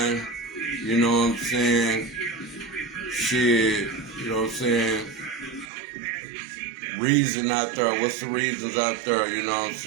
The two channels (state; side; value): drops out; left; at 5.7 s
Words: You know what I'm saying? Shit, you know what I'm saying? Reason out there. What's the reasons out there? You know what I'm